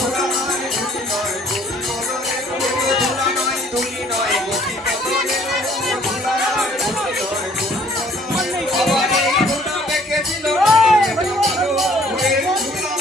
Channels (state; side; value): normal; both; correlation 0.59